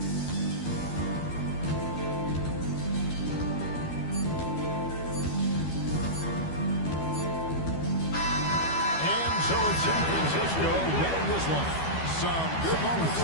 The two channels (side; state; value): right; late; 12 ms